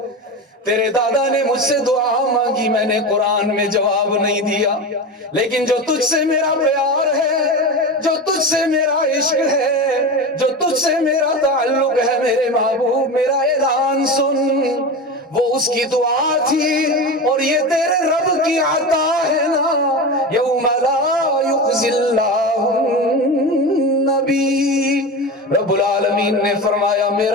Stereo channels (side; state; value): both; normal; correlation 0.24